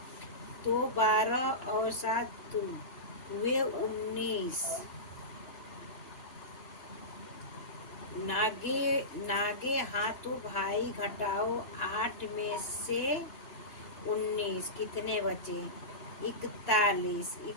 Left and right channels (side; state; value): right; late; 2.9 ms